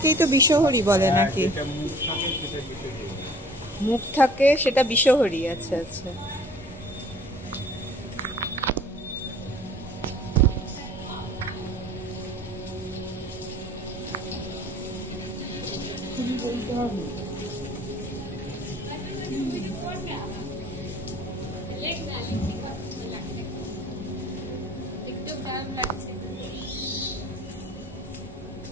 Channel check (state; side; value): normal; both; correlation 0.50